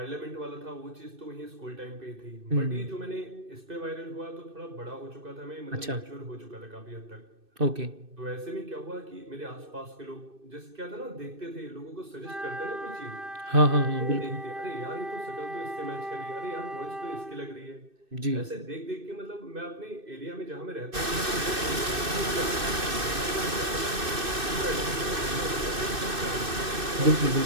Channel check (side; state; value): left; late; 2.6 ms